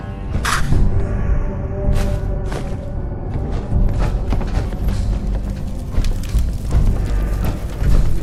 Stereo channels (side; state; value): both; identical; correlation 1.00